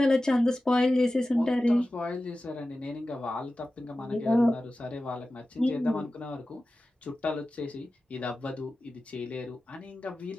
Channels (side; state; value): both; normal; correlation 0.95